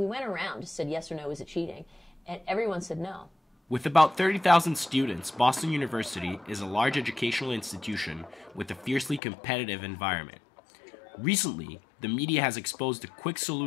went around, just said yes or no, is it cheating? And everyone said no. With about 30,000 students, Boston University is a large educational institution with a fiercely competitive environment. Recently, the media has exposed a quick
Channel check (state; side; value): drops out; right; at 9.2 s